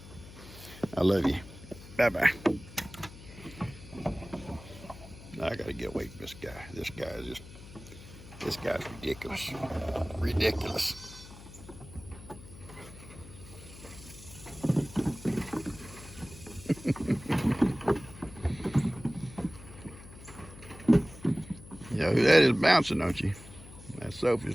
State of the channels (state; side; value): noise; left; hum, 17 dB below the sound